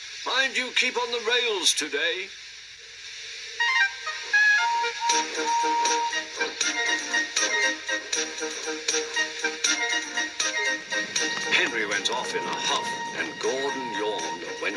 Mind you keep on the rails today. Henry went off in a huff, and Gordon yawned and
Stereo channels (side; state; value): both; identical; correlation 1.00